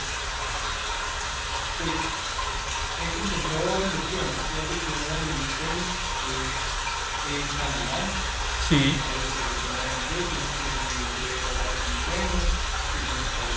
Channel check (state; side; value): identical; both; correlation 1.00